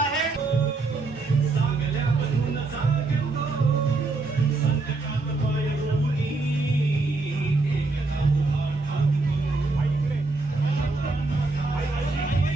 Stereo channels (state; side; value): quieter; left; 3.6 dB